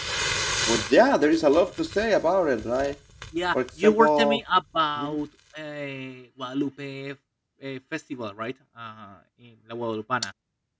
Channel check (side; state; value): both; identical; correlation 1.00